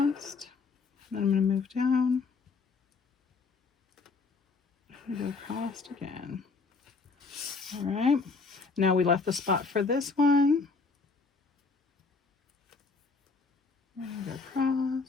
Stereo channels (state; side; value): quieter; right; 4.4 dB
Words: then I'm going to move down. I'm going to go across again. All right, now we left the spot for this one. I'm going to go